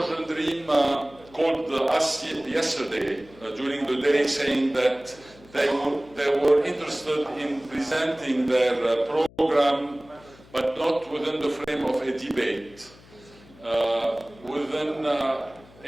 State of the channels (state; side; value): noise; left; hum, 24 dB below the sound